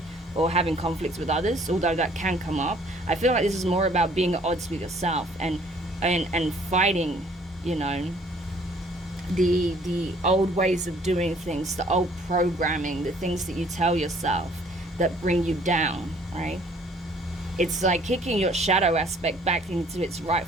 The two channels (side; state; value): both; normal; correlation 0.58